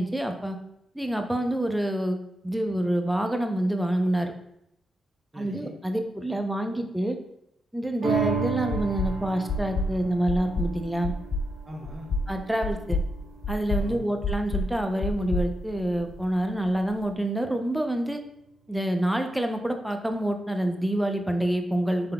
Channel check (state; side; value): normal; both; correlation 0.86